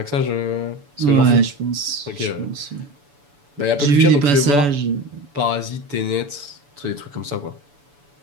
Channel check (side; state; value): left; late; 7.0 ms